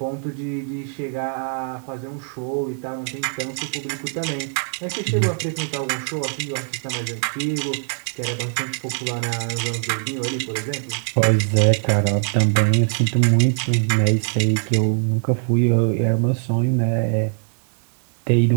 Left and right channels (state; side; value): silent; left; 56 dB below the other